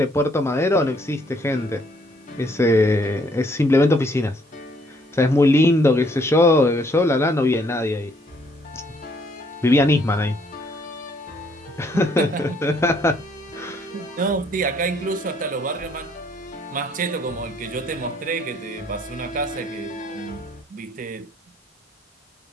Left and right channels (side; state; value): both; normal; correlation 0.66